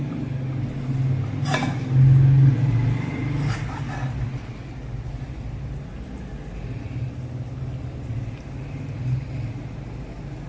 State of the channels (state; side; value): identical; both; correlation 1.00